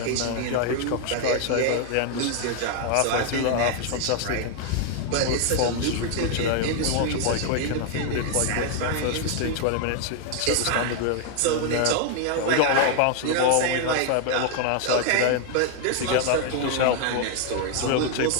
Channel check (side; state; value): both; different; correlation 0.00